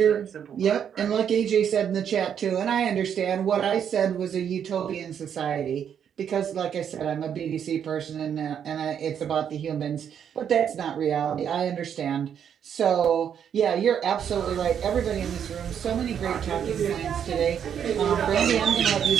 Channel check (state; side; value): quieter; left; 8.4 dB